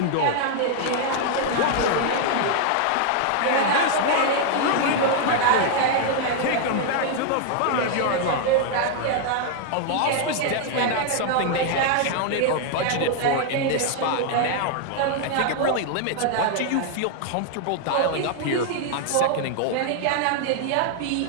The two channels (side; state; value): both; different; correlation 0.00